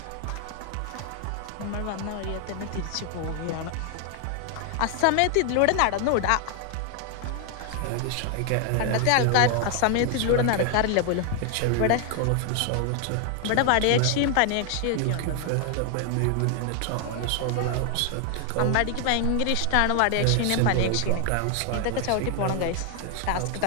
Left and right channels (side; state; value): both; different; correlation 0.00